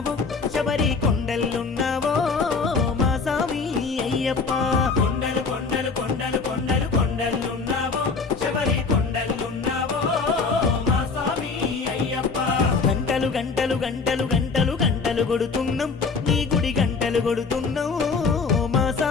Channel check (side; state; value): right; quieter; 4.6 dB